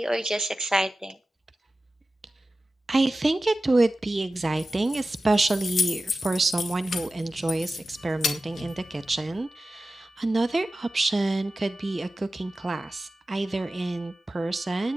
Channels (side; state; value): both; normal; correlation 0.94